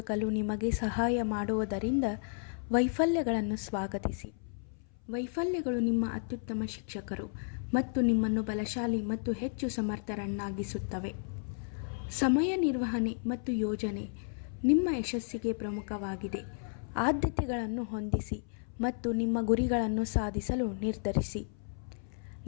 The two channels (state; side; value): silent; right; 56 dB below the other